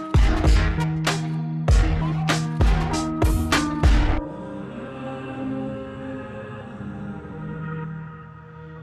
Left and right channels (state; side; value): identical; both; correlation 1.00